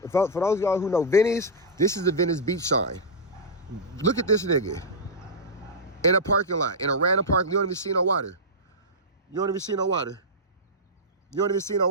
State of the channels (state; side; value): normal; both; correlation -0.09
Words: For those of y'all who know Venice, this is the Venice Beach sign. Look at this nigga. In a parking lot, in a random parking. You don't even see no water. You won't even see no water.